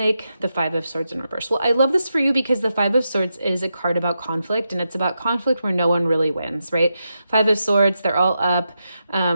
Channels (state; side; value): inverted; both; correlation -0.86